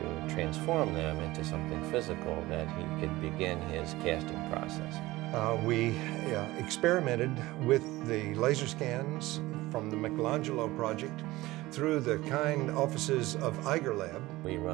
transform them into something physical that he could begin his casting process. We experimented with the laser scans from the Michelangelo project through the kind offices of Eiger Lab. We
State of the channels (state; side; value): quieter; left; 18.8 dB